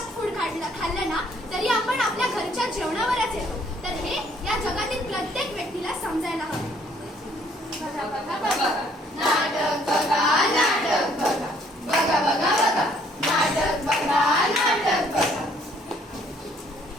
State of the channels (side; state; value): both; normal; correlation 0.63